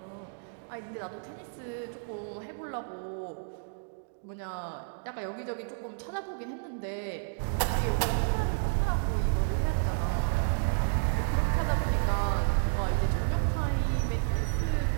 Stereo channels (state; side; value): silent; left; digital silence